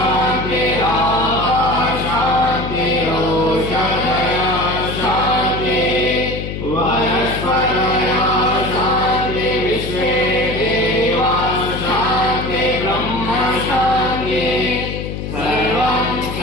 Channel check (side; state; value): left; noise; hum, 6 dB below the sound